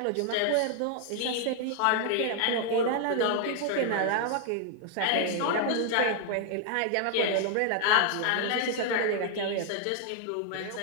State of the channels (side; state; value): both; different; correlation 0.00